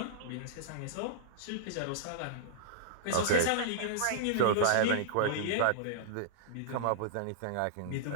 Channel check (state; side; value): different; both; correlation -0.02